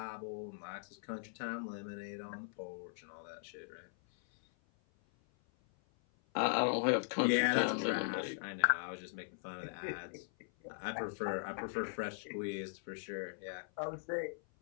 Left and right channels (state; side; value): silent; right; 52 dB below the other